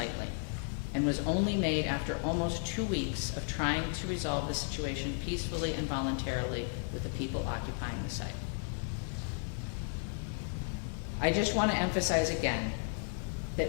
and was only made after almost 2 weeks of trying to resolve the situation peacefully and voluntarily with the people occupying the site. I just want to emphasize again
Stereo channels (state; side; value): silent; right; 55 dB below the other